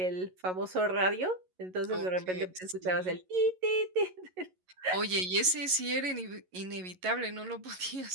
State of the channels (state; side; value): late; left; 11 ms